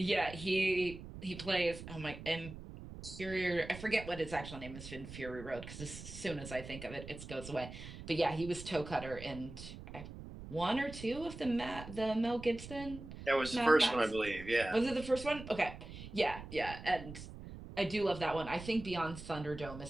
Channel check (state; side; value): noise; right; rumble, 12 dB below the sound